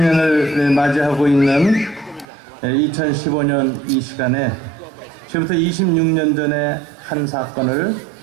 맞이하고 있는 2015년 이 시간에 지금부터 26년 전에 한 사건을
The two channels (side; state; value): left; drops out; at 2.2 s